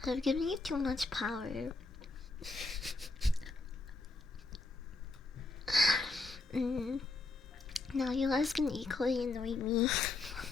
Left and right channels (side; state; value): right; quieter; 3.4 dB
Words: I've given you too much power. Now you guys can equally annoy me.